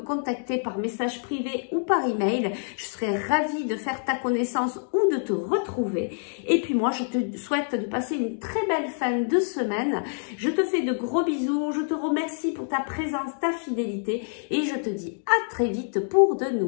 par message privé ou par email. Je serai ravie de faire ta connaissance ou de te retrouver. Et puis moi, je te souhaite de passer une très belle fin de semaine. Je te fais de gros bisous. Je te remercie pour ta présence, ta fidélité et je te dis à très vite pour de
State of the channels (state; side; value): silent; right; digital silence